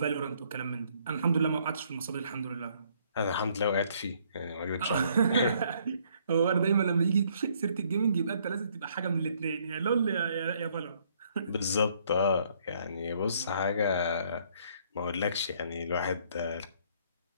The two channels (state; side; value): inverted; both; correlation -0.65